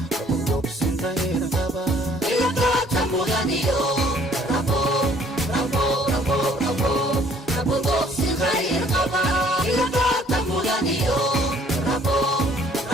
rabo dogsin qayr qaba ila doorta mudaniyo rabo rabo rabo rabo rabo dogsin qayr qaba ila doorta mudaniyo rabo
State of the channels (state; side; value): normal; both; correlation 0.59